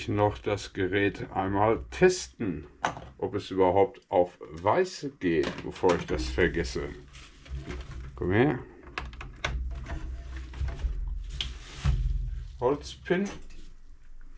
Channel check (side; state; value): both; identical; correlation 1.00